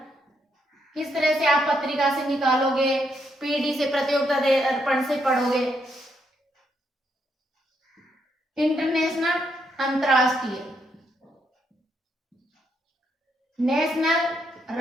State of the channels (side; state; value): both; normal; correlation 0.77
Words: किस तरह से आप पत्रिका से निकालोगे, पीडी से, प्रतियोगिता दर्पण से पढ़ोगे। इंटरनेशनल अंतरराष्ट्रीय, नेशनल